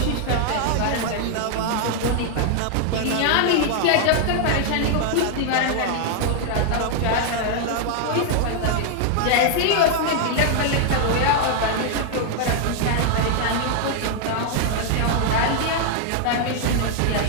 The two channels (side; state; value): both; different; correlation 0.00